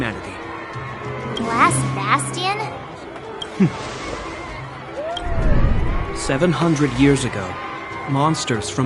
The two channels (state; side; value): identical; both; correlation 1.00